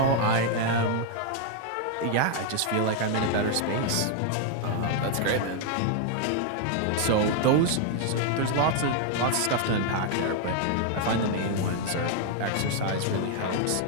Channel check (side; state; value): both; different; correlation 0.00